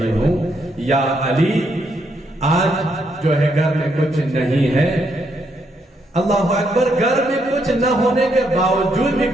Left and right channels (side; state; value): both; normal; correlation 0.76